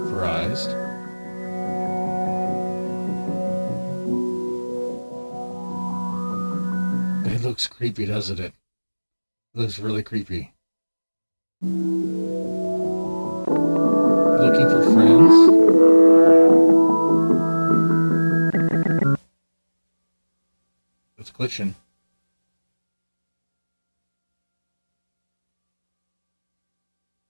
Surprised. It looks creepy, doesn't it? It looks really creepy. Looking for friends? It's glitching.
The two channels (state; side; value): inverted; both; correlation -1.00